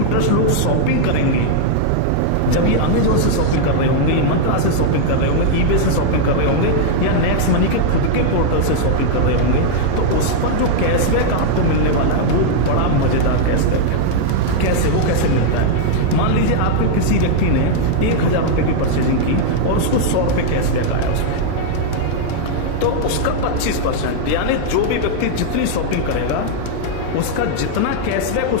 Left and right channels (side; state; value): both; different; correlation -0.01